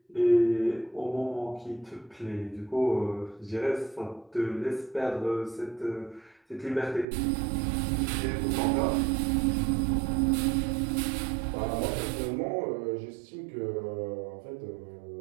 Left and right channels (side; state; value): left; drops out; at 7.1 s